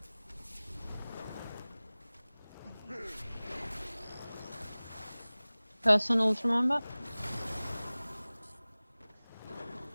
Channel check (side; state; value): both; inverted; correlation -0.99